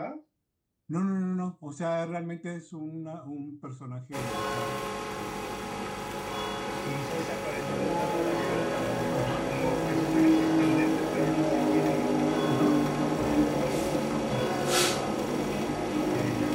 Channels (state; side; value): identical; both; correlation 1.00